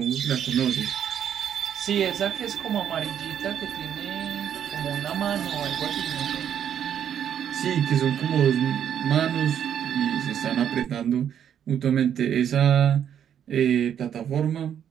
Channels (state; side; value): quieter; left; 9.2 dB